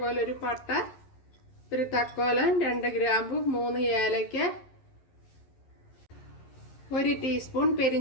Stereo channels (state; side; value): late; right; 11 ms